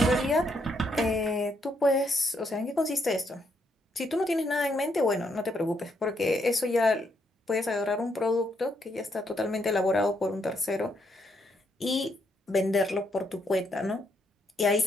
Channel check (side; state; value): both; normal; correlation 0.75